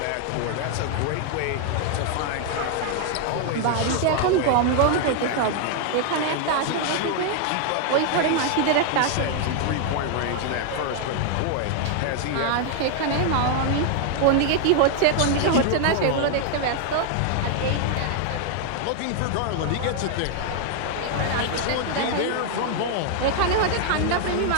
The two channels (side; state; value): both; different; correlation 0.00